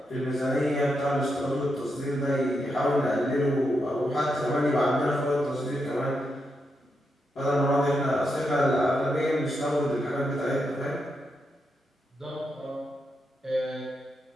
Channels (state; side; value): normal; both; correlation 0.84